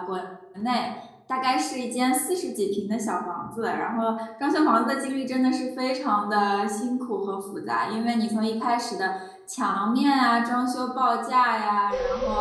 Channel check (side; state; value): both; identical; correlation 1.00